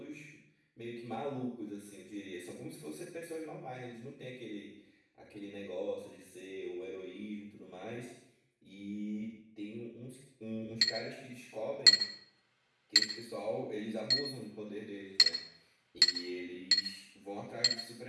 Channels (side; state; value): both; identical; correlation 1.00